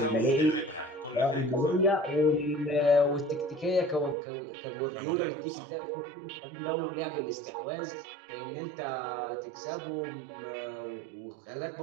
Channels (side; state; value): left; drops out; at 4.2 s